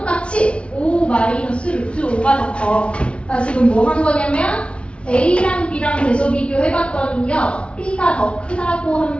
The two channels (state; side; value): late; right; 0.059 ms